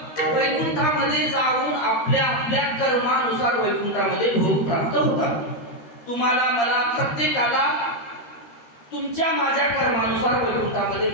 वैकुंठामध्ये जाऊन आपल्या आपल्या कर्मानुसार वैकुंठामध्ये भोग प्राप्त होतात. तुम्हाला मला प्रत्येकाला तुमच्या माझ्या कर्मानुसार वैकुंठामध्ये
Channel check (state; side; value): late; right; 13 ms